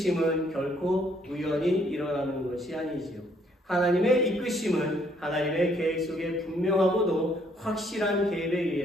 결코 우연히 일어나는 것이 아니지요. 하나님의 이끄심은 하나님의 계획 속에 분명하고도 확실한 계획에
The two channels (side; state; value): both; normal; correlation 0.67